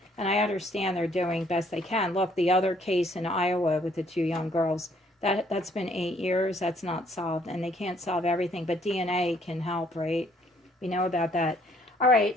And I understand they're doing best they can. Look, the other case in Iowa with the 2 young girls, that's been 8 years. That's not solved. And they can't solve everything. But DNA can help, right? We know about that. All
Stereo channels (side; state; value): both; normal; correlation 0.64